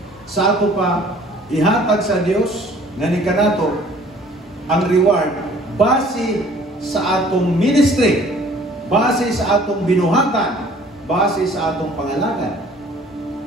Sa ato pa, ihatag sa Dios nga ni kanato ang reward base sa atong ministry, base sa atong binuhatan, base sa atong pangalagan.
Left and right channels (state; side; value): normal; both; correlation 0.53